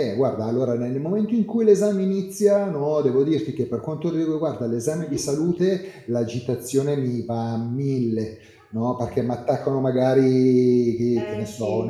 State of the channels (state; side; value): identical; both; correlation 1.00